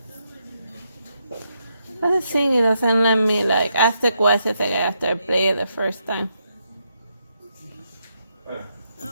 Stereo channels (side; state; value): both; inverted; correlation -0.80